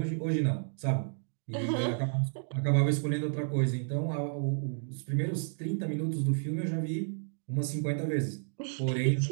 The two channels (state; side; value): silent; left; digital silence